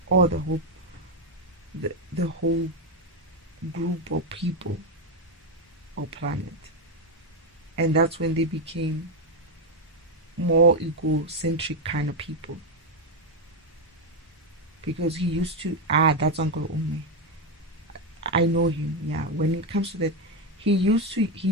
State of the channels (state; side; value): normal; both; correlation 0.06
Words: or the whole group or people or planet. And that's when they became more egocentric kind of people. Because he used to, that's Uncle Ome. I know him, yeah. When it comes to that, he